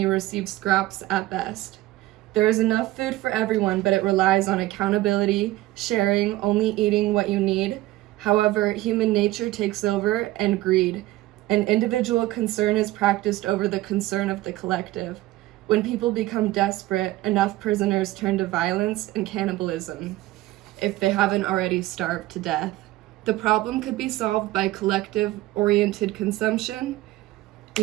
receive scraps at best. There is enough food for everyone, but it relies on accountability, sharing, only eating what you need. However, human nature takes over, and greed. An individual concern is practiced over the concern of the collective. When people become desperate, enough prisoners turn to violence and cannibalism, if they haven't already starved to death. The problem could be solved by collective-oriented consumption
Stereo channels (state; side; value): quieter; left; 17.1 dB